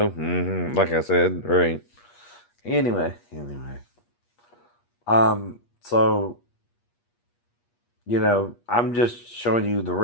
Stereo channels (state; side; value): late; right; 8.4 ms